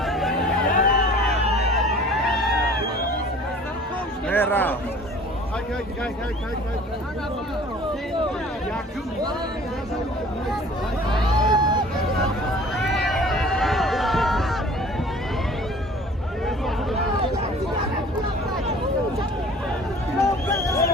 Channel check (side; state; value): both; normal; correlation 0.47